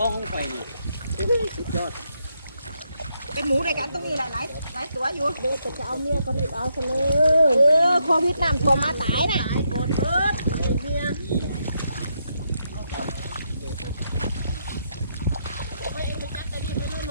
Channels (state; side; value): inverted; both; correlation -0.79